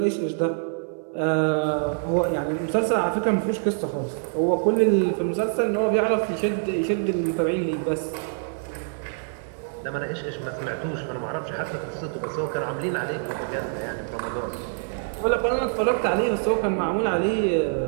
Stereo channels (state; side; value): silent; left; 62 dB below the other